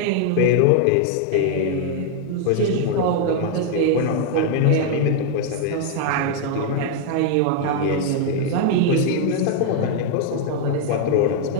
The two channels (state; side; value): different; both; correlation 0.00